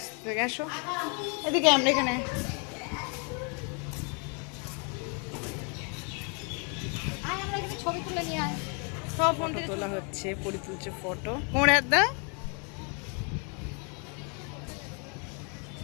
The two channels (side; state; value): right; quieter; 36.7 dB